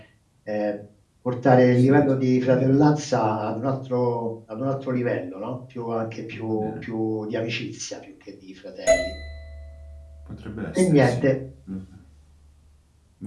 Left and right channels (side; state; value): both; identical; correlation 1.00